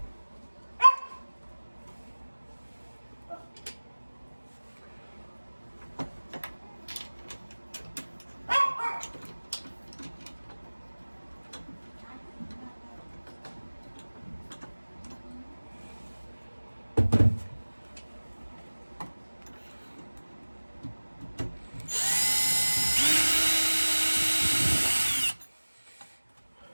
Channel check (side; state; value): both; inverted; correlation -1.00